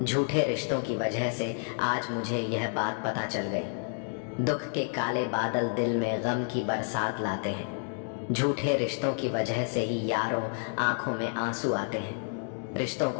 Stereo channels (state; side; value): silent; right; 58 dB below the other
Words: झूठे रिश्तों की वजह से आज मुझे यह बात पता चल गई। दुख के काले बादल दिल में गम की बरसात लाते हैं। झूठे रिश्तों की वजह से ही यारों आंखों में आंसू आते हैं। रिश्तों